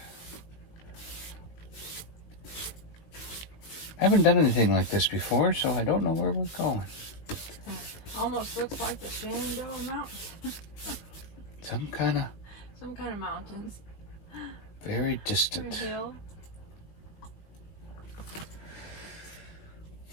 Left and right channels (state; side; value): late; right; 19 ms